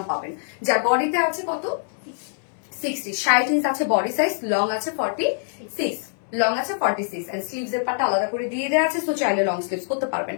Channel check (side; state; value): right; silent; digital silence